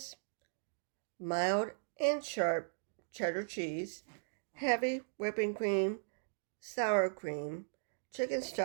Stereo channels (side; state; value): left; silent; digital silence